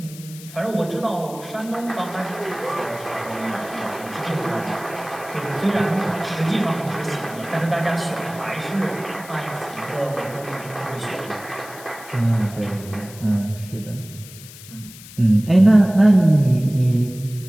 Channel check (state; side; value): noise; left; hiss, 17 dB below the sound